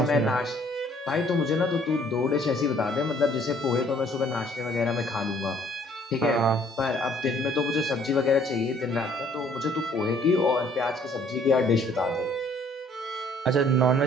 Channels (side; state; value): both; normal; correlation 0.60